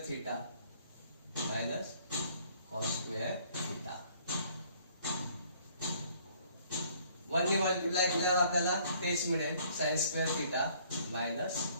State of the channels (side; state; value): both; inverted; correlation -0.60